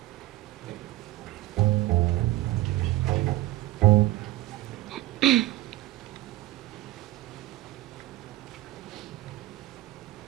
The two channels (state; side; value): quieter; left; 16.2 dB